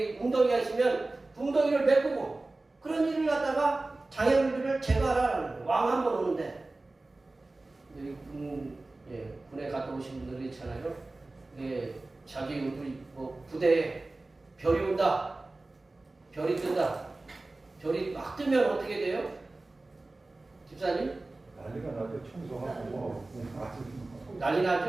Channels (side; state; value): left; quieter; 3.1 dB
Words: 웅덩이가 있으면 웅덩이를 메꾸고 그런 일을 갖다가 장애물들을 제거하라는 거예요. 왕 한 번 오는데. 여기 군에 갔다 오신 분들이 있잖아요. 자기 부대에 별이 온다. 별이 뜬다. 별이 막 뜨면 어떻게 돼요? 집사님? 난리가 나죠. 청소하고 난리